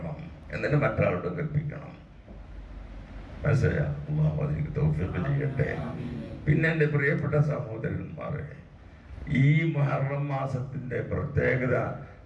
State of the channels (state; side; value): identical; both; correlation 1.00